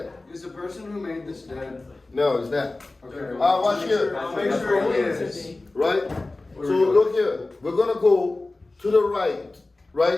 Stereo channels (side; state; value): right; quieter; 3.1 dB